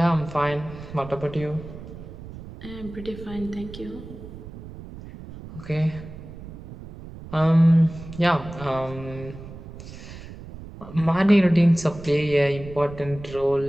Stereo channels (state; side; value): noise; right; rumble, 14 dB below the sound